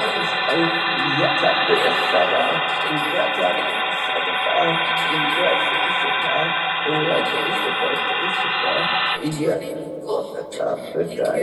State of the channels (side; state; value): both; identical; correlation 1.00